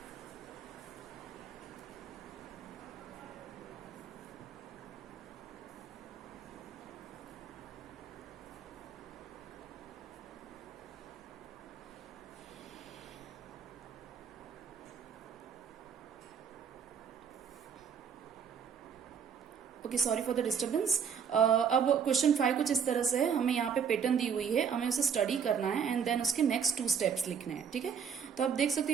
Okay, sorry for the disturbance. अब क्वेश्चन 5 कुछ इस तरह से है। हमें यहाँ पे पैटर्न दी हुई है, हमें उसे स्टडी करना है एंड देन उसके नेक्स्ट 2 स्टेप्स लिखने हैं। ठीक है, तो आप देख सकते हो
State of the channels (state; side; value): quieter; left; 7.0 dB